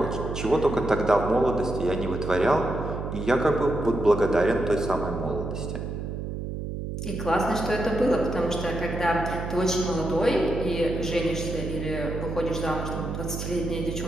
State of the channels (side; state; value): right; noise; hum, 5 dB below the sound